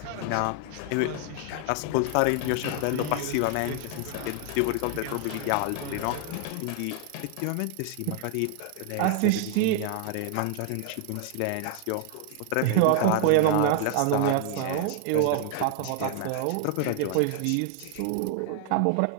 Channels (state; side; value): different; both; correlation 0.00